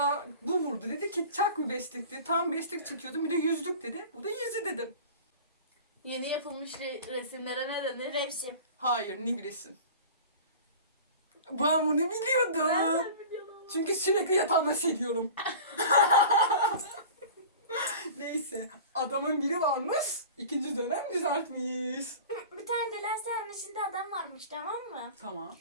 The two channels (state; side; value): inverted; both; correlation -0.38